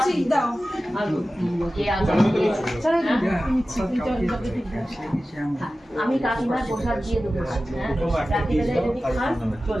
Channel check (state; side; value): normal; both; correlation 0.95